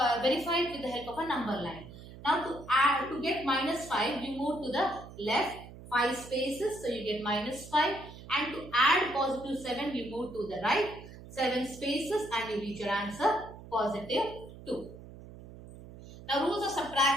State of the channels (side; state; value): right; noise; hum, 16 dB below the sound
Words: verify it with the help of a number line. Now to get minus 5, you move to the left 5 spaces. So you get minus 5. And to add positive 7, you move to the right 7 spaces and you reach your answer positive 2. Now rules of